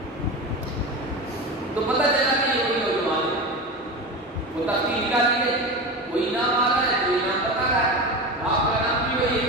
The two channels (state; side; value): normal; both; correlation 0.25